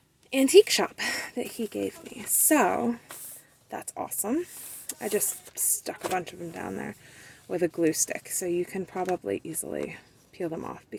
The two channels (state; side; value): identical; both; correlation 1.00